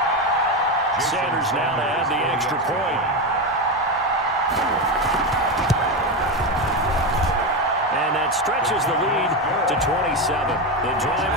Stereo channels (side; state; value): both; normal; correlation 0.14